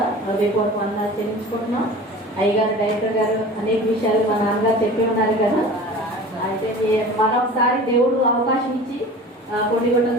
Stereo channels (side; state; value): both; normal; correlation 0.39